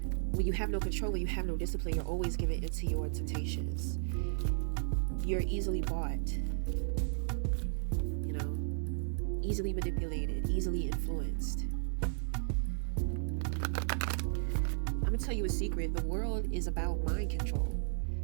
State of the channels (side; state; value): left; silent; digital silence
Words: When you have no control, when you have no discipline, you're always giving into your temptations. You're easily bought, you know, easily manipulated, easily influenced. I'm gonna tell you a secret. The world is about mind control.